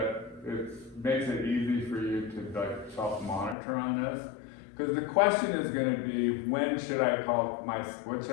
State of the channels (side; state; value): right; drops out; at 3.6 s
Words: it makes it easy for you to like self-monitor on this, because the question is going to be, when should I put